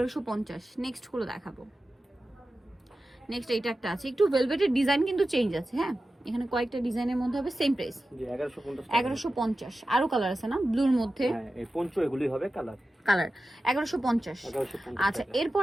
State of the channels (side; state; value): both; normal; correlation 0.93